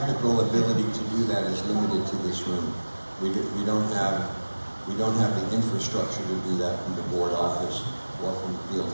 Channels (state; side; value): inverted; both; correlation -1.00